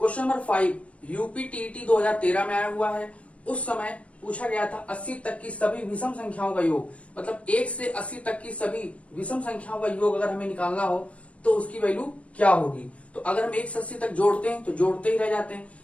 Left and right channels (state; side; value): late; right; 0.063 ms